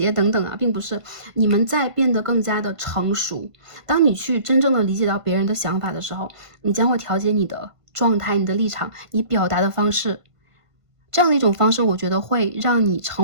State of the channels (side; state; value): left; late; 1.5 ms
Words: 等等啊，并不是，你们在变得更加的成熟。当你去真正的理解到别人的想法的时候，你将会调节你的状态、你的立场、你表达的方式。这样的一种方式，我觉得会让你